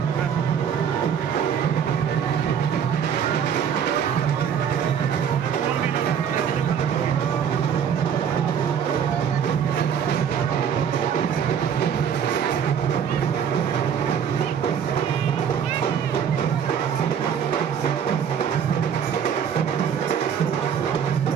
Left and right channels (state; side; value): quieter; left; 8.0 dB